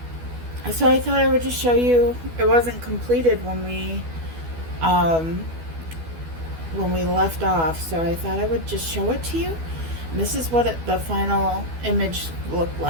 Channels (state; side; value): late; left; 12 ms